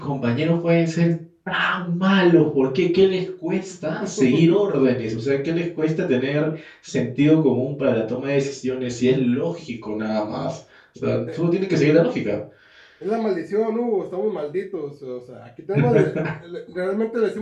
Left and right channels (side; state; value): both; identical; correlation 1.00